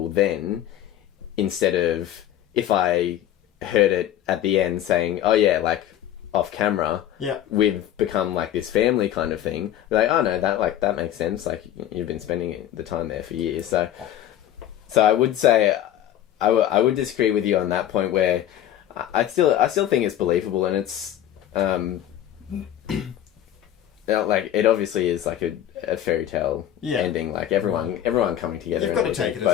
then, instead of if I heard it at the end saying, oh yeah, like, off camera, Yeah. we've become like this family kind of thing. Like, oh no, that makes sense. Like, you've been spending the time there for years. So I would say I would disagree with you on that point, where I still think it's believable, and it's like, it obviously is like a fairy tale ending. Like, everyone coming together. You've got to take it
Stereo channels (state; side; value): quieter; right; 11.6 dB